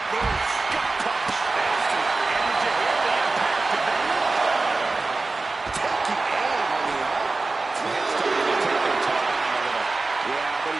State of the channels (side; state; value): left; quieter; 3.5 dB